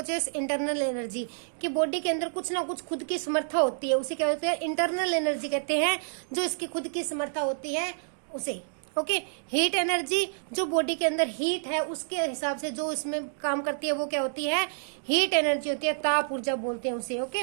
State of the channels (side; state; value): left; silent; digital silence